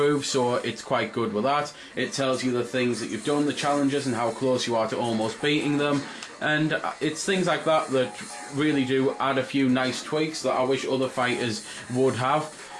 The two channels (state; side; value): identical; both; correlation 1.00